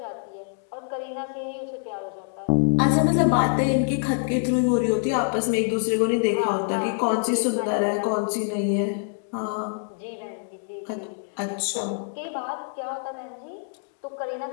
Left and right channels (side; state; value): right; silent; digital silence